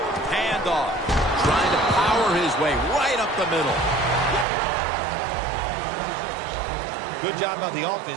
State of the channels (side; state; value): left; drops out; at 4.5 s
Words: Handoff. Trying to power his way right up the middle. Good job by the